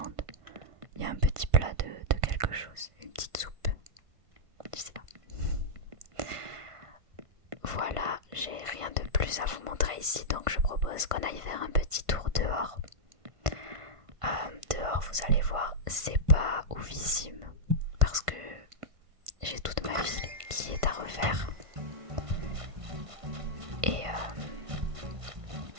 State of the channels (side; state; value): left; late; 1.5 ms